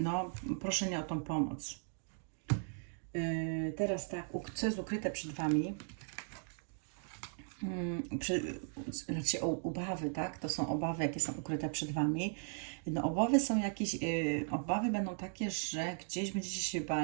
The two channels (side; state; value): left; silent; 53 dB below the other